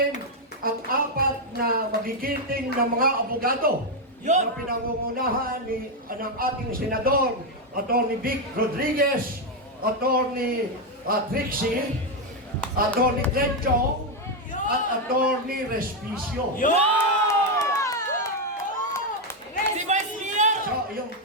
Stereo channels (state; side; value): normal; both; correlation 0.04